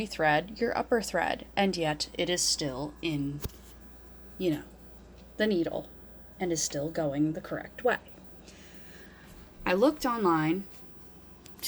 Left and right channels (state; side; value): identical; both; correlation 1.00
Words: your upper thread, and yet it is still in, the needle and is still going the correct way. I looked online